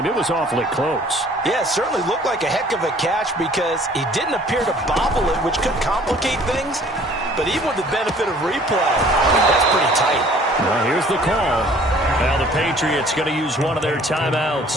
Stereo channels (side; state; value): both; normal; correlation 0.54